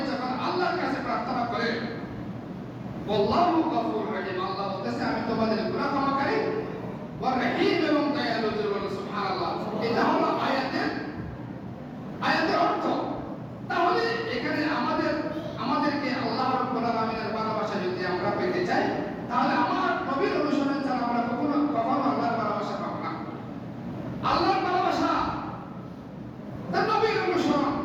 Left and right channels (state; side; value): identical; both; correlation 1.00